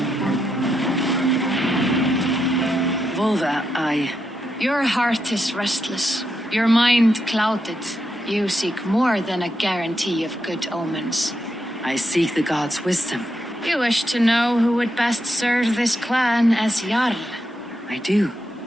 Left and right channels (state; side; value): normal; both; correlation 0.83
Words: Volva, Your heart is restless, your mind clouded. You seek more than a guarantee of good omens. I seek the gods' wisdom. You wish to know who would best serve this clan as Jarl. I do.